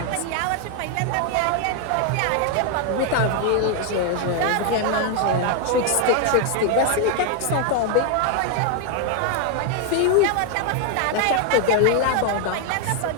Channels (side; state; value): both; different; correlation 0.01